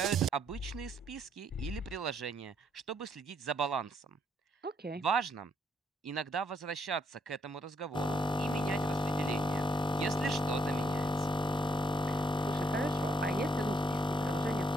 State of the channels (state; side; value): normal; both; correlation 0.72